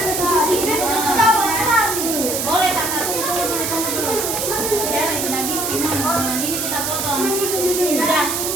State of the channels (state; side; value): noise; right; hiss, 1 dB below the sound